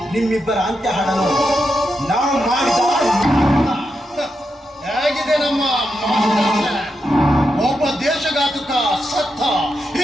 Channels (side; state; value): both; normal; correlation 0.86